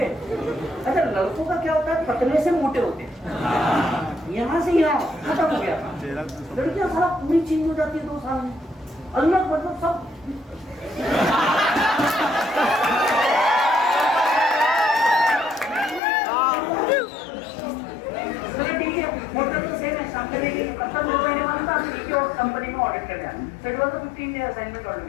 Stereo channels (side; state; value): right; drops out; at 16.0 s